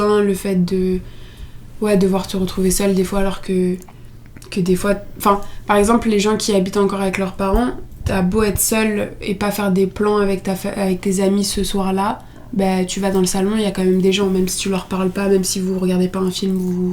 le fait de devoir te retrouver seule des fois, alors que des fois, enfin, par exemple, les gens qui habitent encore avec leurs parents, t'as beau être seule et pas faire des plans avec tes amis ce soir-là, bah, tu vas dans le salon, il y a quand même des gens, même si tu leur parles pas, même si vous regardez pas un film,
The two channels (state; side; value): identical; both; correlation 1.00